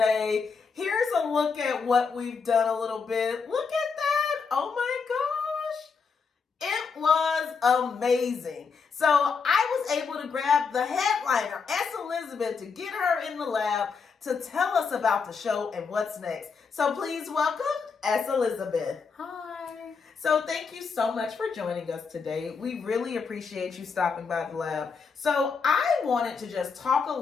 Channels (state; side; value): quieter; right; 5.3 dB